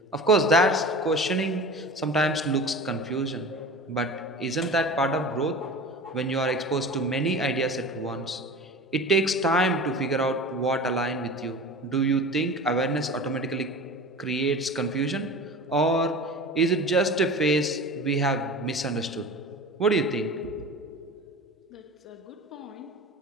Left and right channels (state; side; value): normal; both; correlation 0.35